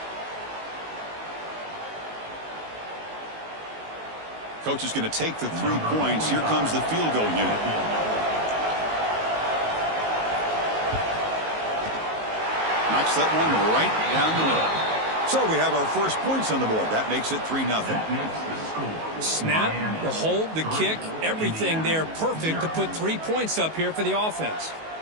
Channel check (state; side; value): late; left; 19 ms